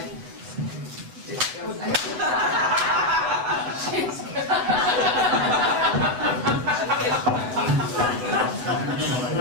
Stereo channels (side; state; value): left; late; 8.0 ms